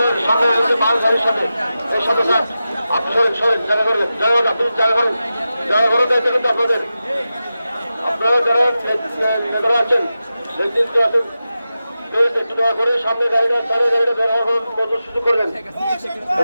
সামনে মাল গাড়ির সামনে এই সাথে স্যার আপনি সরেন জায়গা করবেন আপনি জায়গা করেন দায়িত্ব কিন্তু আপনাদের আপনারা যারা নেতারা আছেন নেতৃত্ব আছেন একটু দয়া করে সামনে গাড়িটা বের হওয়ার মতো সুযোগ করবেন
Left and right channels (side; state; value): both; inverted; correlation -0.92